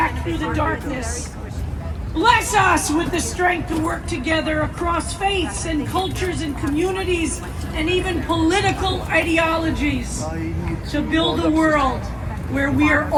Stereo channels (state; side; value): identical; both; correlation 1.00